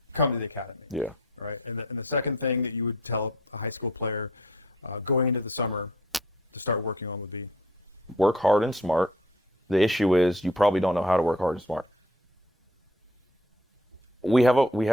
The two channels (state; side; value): normal; both; correlation 0.55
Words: come to the academy. Yeah. Right. And the second thing that you would tell a high school player going into the summer to start working on would be? Work hard and smart. The issue is you probably don't know how to work hard and smart. We have